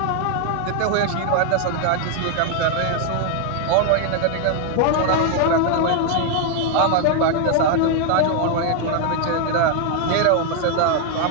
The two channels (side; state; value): both; different; correlation 0.00